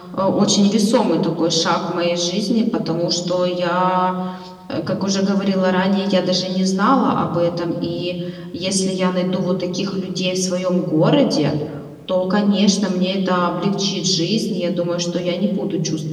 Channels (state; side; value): identical; both; correlation 1.00